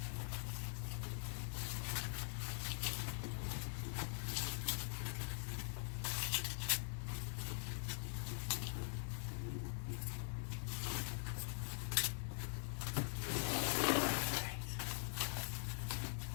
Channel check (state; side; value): silent; right; digital silence